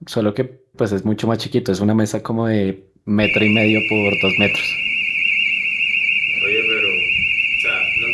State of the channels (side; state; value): both; identical; correlation 1.00